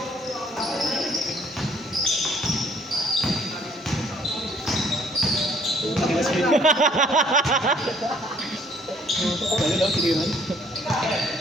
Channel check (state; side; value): normal; both; correlation 0.61